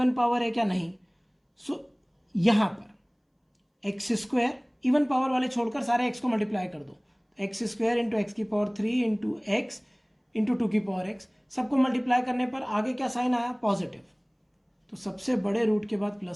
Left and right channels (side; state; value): both; identical; correlation 1.00